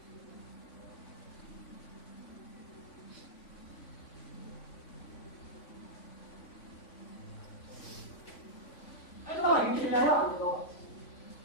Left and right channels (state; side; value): late; right; 3.5 ms